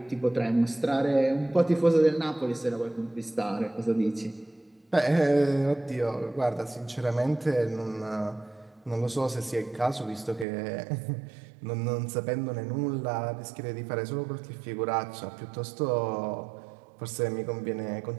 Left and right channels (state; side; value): drops out; left; at 10.5 s